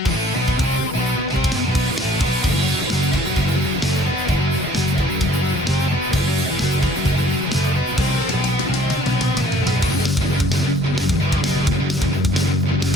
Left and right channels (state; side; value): normal; both; correlation 0.56